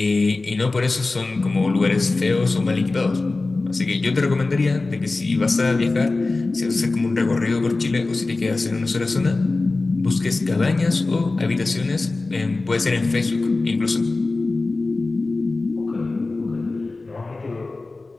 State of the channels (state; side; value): quieter; right; 3.4 dB